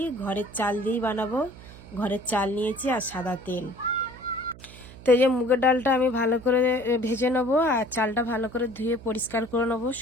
ঘরের চাল দিয়েই বানাবো। ঘরের চাল নিয়েছি আর সাদা তেল। তো এই যে মুগের ডালটা আমি ভালো করে ভেজে নেবো, আর চালটা ভালো করে ধুয়ে পরিষ্কার করে নেবো।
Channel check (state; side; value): noise; right; hum, 18 dB below the sound